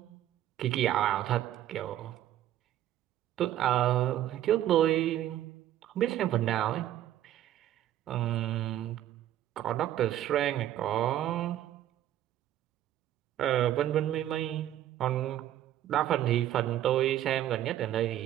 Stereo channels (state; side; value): quieter; left; 12.4 dB